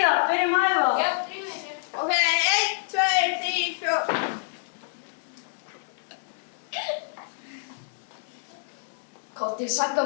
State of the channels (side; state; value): right; silent; digital silence